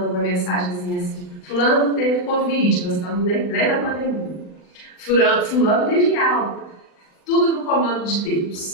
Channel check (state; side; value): late; right; 40 ms